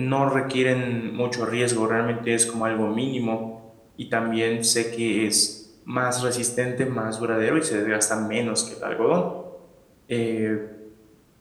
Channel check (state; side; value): identical; both; correlation 1.00